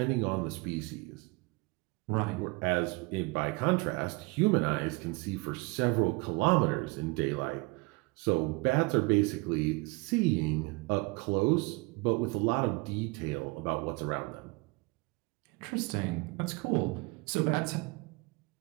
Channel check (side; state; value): left; quieter; 26.5 dB